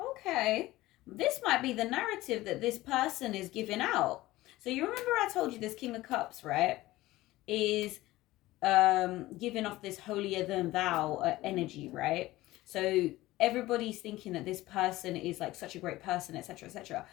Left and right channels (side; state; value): right; quieter; 17.6 dB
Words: This might be the narrative that this person is giving out. So you remember I told you this King of Cups, right, is giving off this holier than thou energy, right? So everybody's thinking that this person is like such a great person, etc., etc.